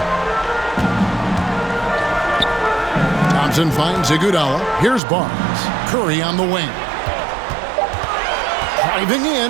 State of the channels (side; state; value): left; drops out; at 5.0 s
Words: Thompson finds Iguodala. Here's Barnes. Curry on the wing. Driving